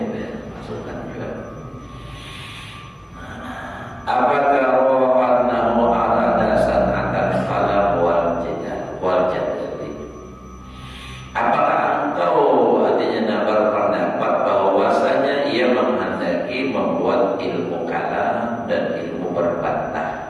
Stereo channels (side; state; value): both; identical; correlation 1.00